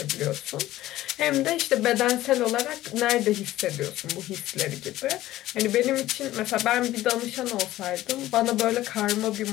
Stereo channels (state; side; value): quieter; right; 15.3 dB